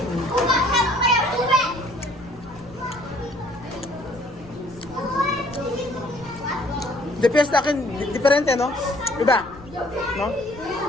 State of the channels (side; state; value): left; noise; rumble, 21 dB below the sound